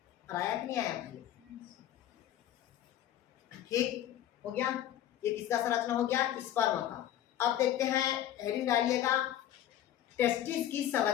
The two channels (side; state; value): right; quieter; 12.0 dB